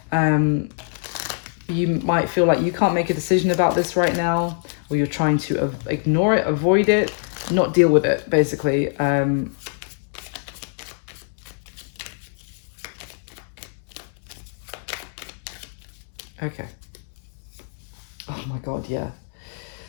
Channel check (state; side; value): silent; right; 63 dB below the other